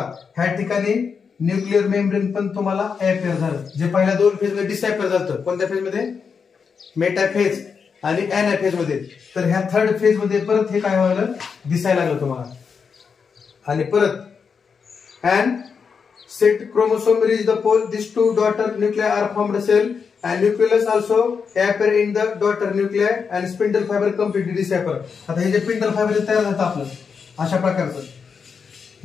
ह्या ठिकाणी न्यूक्लिअर मेम्ब्रेन पण तुम्हाला अॅपियर झालं. जे पहिल्या दोन फेज मध्ये डिसअॅपियर झालं. कोणत्या फेज मध्ये? मेटाफेज आणि अॅनाफेज मध्ये. तर ह्या थर्ड फेज मध्ये परत हे काय व्हायला दिसायला लागलं तुम्हाला. आणि परत and set chromosome reach the pole this two daughter nuclei are formed cell and nucleus also appear in the daughter nuclei and spindle fiber completely disappear. आता हे जे स्पिंडल फायबर तयार झालं आपलं अशा प्रकारचं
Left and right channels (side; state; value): right; quieter; 5.9 dB